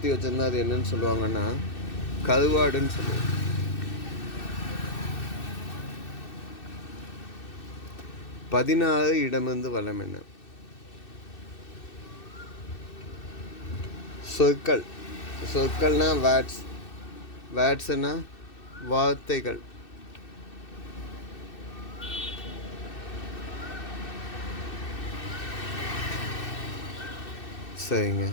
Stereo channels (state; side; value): late; right; 2.6 ms